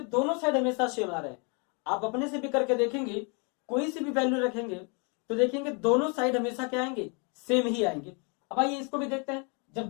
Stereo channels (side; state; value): right; quieter; 34.6 dB